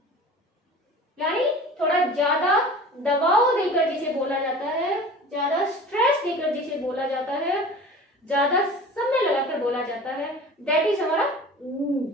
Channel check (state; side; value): normal; both; correlation 0.40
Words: यानी थोड़ा ज्यादा दबाव देकर जिसे बोला जाता है, ज्यादा स्ट्रेस देकर जिसे बोला जाता है, ज्यादा समय लगाकर बोला जाता है, दैट इज हमारा ऊ,